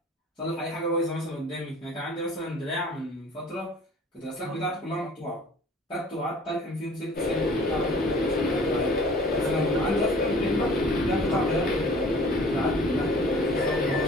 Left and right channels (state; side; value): normal; both; correlation 0.49